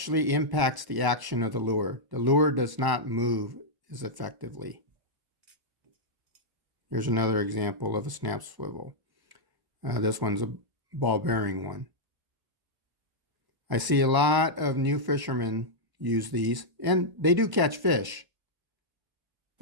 impacts the action of the lure. The lure does not move as effectively. Here's another example of a snap swivel. This one's a ball bearing one. I see a lot of new fishermen use these, and they do catch fish,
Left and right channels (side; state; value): left; late; 1.0 ms